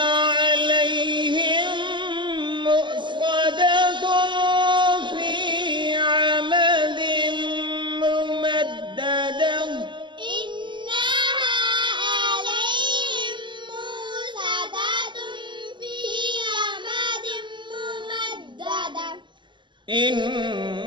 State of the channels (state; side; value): late; left; 0.23 ms